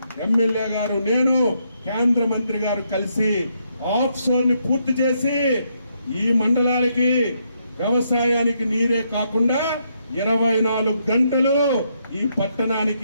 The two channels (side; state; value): both; inverted; correlation -0.76